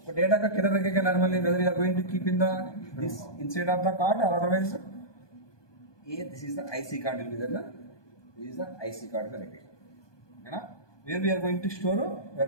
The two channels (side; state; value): right; late; 1.2 ms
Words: डेटा का किधर रखेगा normally, whether you are going to keep in the this inside of the card or otherwise ये this is the IC card will be there ना, this is the IC card में रखेगा है ना। Where we are going to store, we